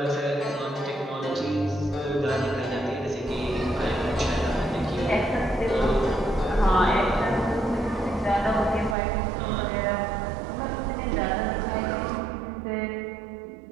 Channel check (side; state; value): left; drops out; at 9.0 s